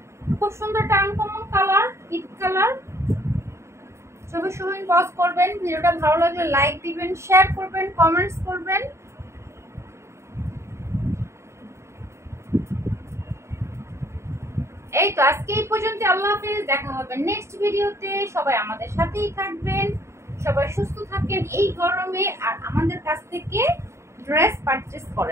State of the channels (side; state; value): left; late; 0.13 ms